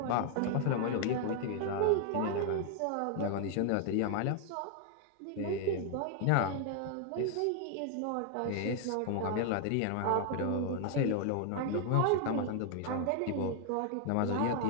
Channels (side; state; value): both; different; correlation 0.00